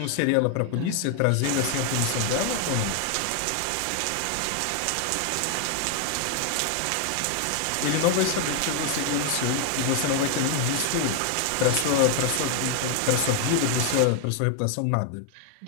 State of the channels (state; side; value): different; both; correlation 0.00